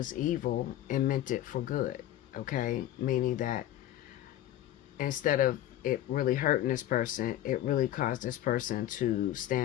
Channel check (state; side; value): quieter; right; 12.9 dB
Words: evil and meant it for good, okay? Meaning that instead of it really hurting this person, it really caused this person to